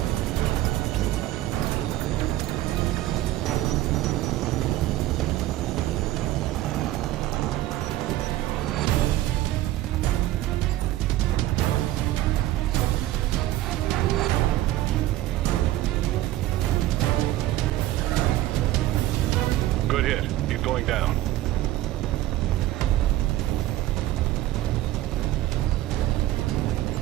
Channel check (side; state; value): left; quieter; 15.1 dB